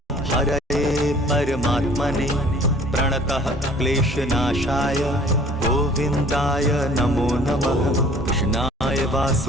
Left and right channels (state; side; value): normal; both; correlation 0.52